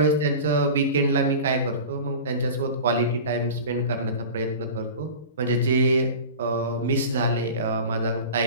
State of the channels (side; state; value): both; inverted; correlation -0.34